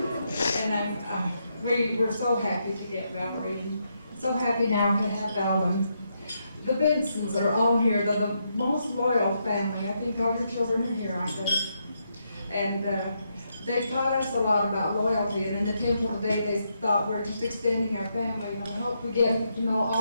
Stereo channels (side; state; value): both; inverted; correlation -0.80